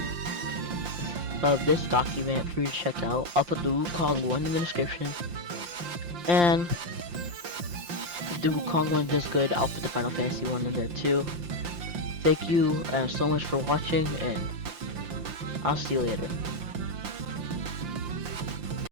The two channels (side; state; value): left; late; 5.7 ms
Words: of this document for you to check out. I'll put the Wukong one in the description. And if the Wukong one does good, I'll put the Final Fantasy one in there too. Thank you so much for watching, and I'll see you later.